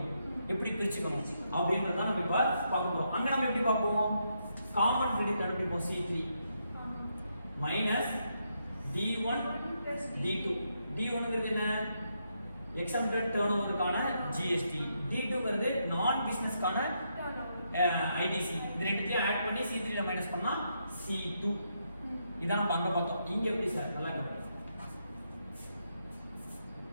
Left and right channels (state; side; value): inverted; both; correlation -0.79